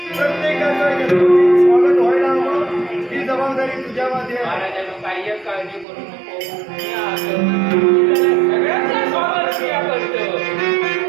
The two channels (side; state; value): left; drops out; at 5.9 s